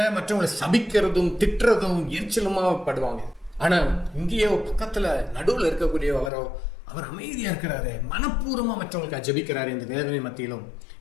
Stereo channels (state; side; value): drops out; right; at 6.3 s